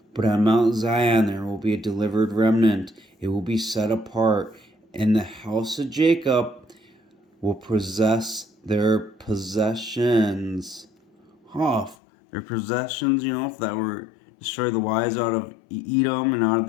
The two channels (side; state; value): right; drops out; at 12.0 s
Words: But on Mount Zion there will be a delivered remnant. It will be set apart, and the house of Jacob will possess their possessions. Their possessions, that were destroy the wise out of Edom and out of